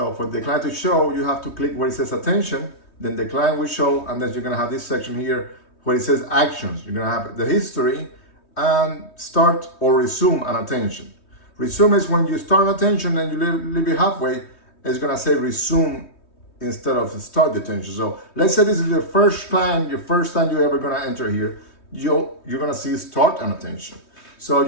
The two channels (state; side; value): late; right; 3.2 ms